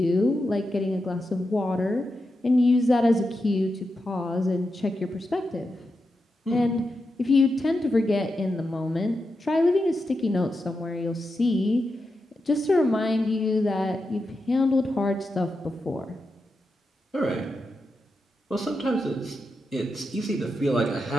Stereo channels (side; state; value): both; normal; correlation 0.88